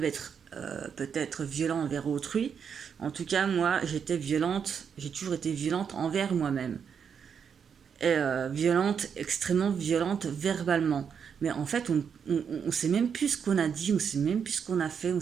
être peut-être violents envers autrui. En tout cas, moi, j'ai toujours été violente envers moi-même. Et violente, extrêmement violente verbalement. Mais en fait, on ne sait même plus ce qu'on a dit, on ne sait même plus ce qu'on a fait, on ne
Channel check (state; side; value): quieter; left; 7.1 dB